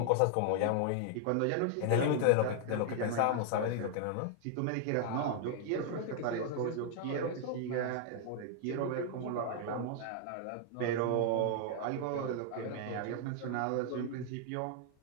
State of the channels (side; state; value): both; different; correlation 0.00